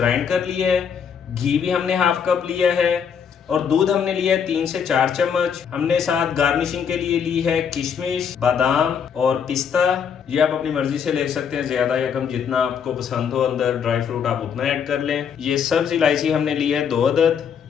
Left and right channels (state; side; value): quieter; right; 7.3 dB